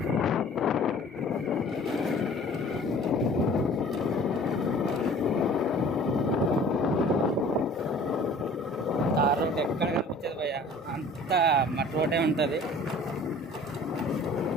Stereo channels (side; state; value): both; normal; correlation 0.48